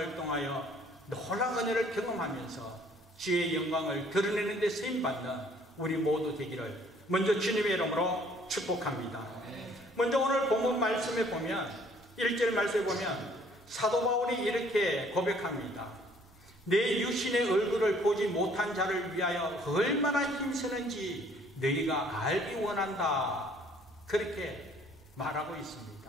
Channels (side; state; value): both; normal; correlation 0.59